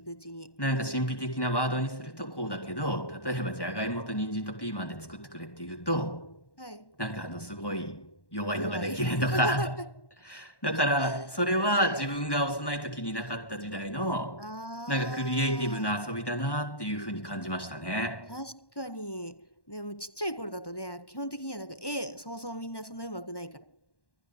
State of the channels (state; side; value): late; right; 1.1 ms